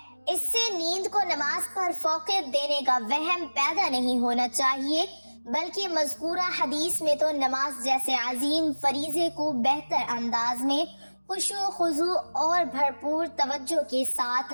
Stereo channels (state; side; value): inverted; both; correlation -1.00